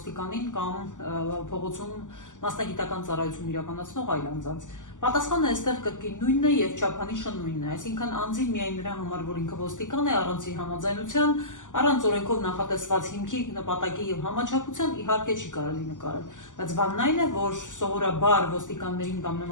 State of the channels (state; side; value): late; right; 0.87 ms